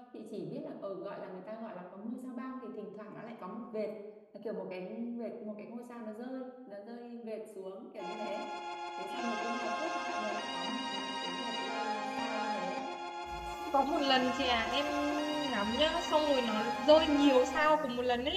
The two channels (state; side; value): identical; both; correlation 1.00